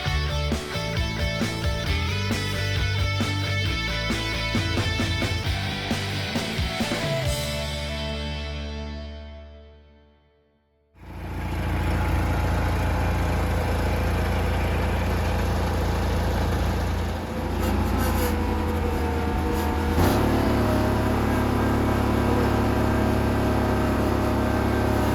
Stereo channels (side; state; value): both; identical; correlation 1.00